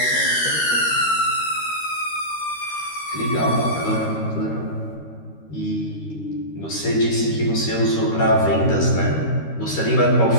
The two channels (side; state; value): right; late; 13 ms